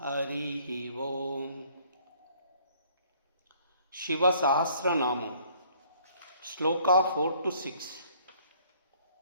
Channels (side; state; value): both; inverted; correlation -0.60